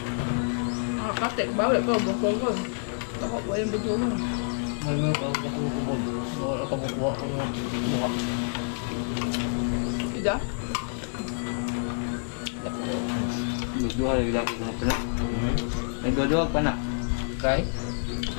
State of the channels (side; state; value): right; silent; digital silence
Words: Nakakatik. Bawal ko. Bukol ko. Ako po yung video mo. Ano ba ako kumod? Wala ka bukuha ko ng mukha. Ida? Duduha lagi lagi ko na. Nagduduha pa na. Kay?